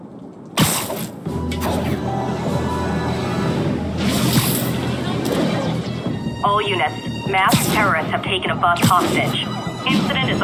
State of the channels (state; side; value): identical; both; correlation 1.00